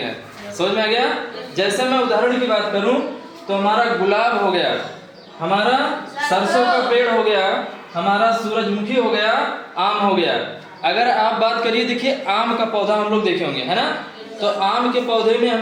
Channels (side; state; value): both; identical; correlation 1.00